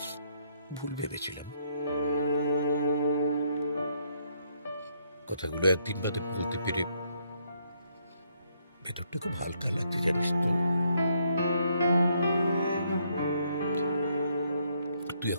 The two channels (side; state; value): both; inverted; correlation -0.71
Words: ভুল ভেবেছিলাম। কথাগুলো একদিন বাদে বলতে পেরে ভেতরটা খুব হালকা লাগছে, জানিস তো। তুই